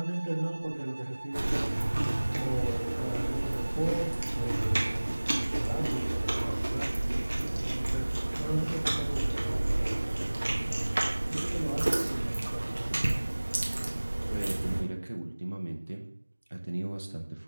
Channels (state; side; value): inverted; both; correlation -1.00